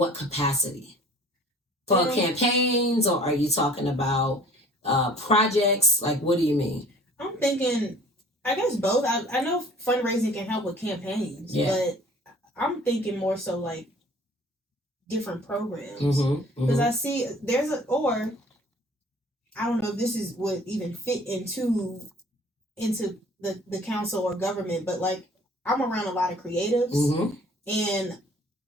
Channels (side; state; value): both; normal; correlation 0.50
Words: capacity? For campaigns, or are you talking about projects? Like, what do you mean? I'm thinking, I guess both. I know fundraising can help with campaigns, but I'm thinking more so like different programs. Because I see or I don't know if this would even fit into the council or government, but like I'm around a lot of creatives and